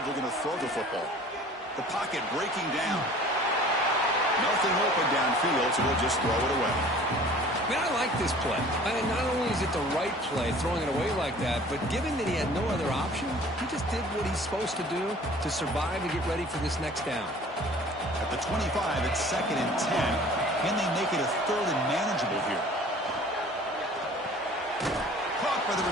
looking to throw the football. The pocket breaking down. Nothing open downfield, so they'll just throw it away. Man, I like this play. Not only is it the right play, throwing it away like that, but given that he had no other option, he just did what he's supposed to do to survive and get ready for this next down. At the 25, it's 2nd and 10. Can they make it a 3rd and manageable here? Caught by the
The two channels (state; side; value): normal; both; correlation 0.48